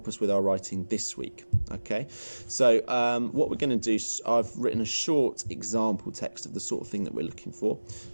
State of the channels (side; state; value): both; inverted; correlation -1.00